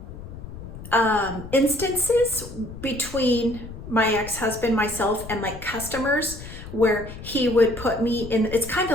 instances between my ex-husband, myself, and like customers where he would put me in, it's kind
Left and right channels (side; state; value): left; noise; rumble, 12 dB below the sound